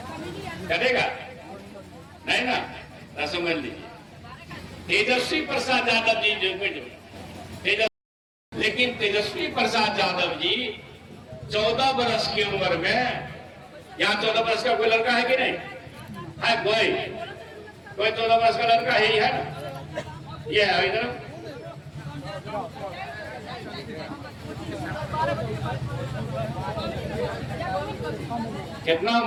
करेगा नहीं ना? तो समझ लीजिए तेजस्वी प्रसाद यादव जी जो लेकिन तेजस्वी प्रसाद यादव जी 14 वर्ष की उम्र में, यहाँ 14 वर्ष का कोई लड़का है कि नहीं है? कोई 14 वर्ष का लड़का है ही है ना? ये है इधर। कितना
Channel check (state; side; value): identical; both; correlation 1.00